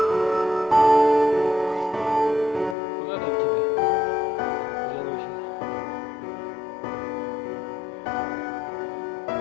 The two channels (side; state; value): right; drops out; at 2.8 s